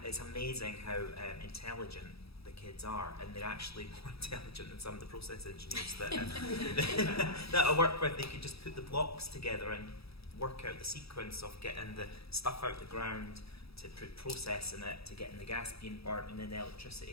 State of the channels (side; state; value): right; late; 0.77 ms